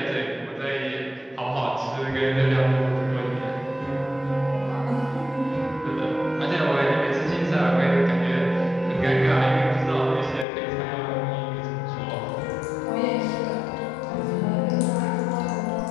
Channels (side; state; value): right; drops out; at 10.5 s